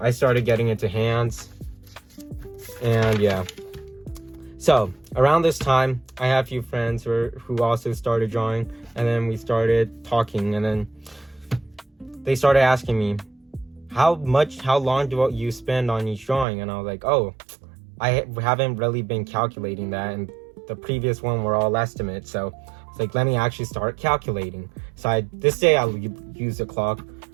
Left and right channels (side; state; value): left; drops out; at 16.4 s